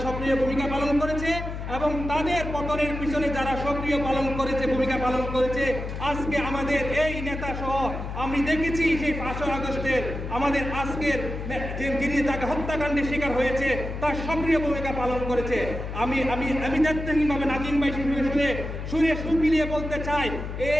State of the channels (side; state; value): left; noise; hum, 6 dB below the sound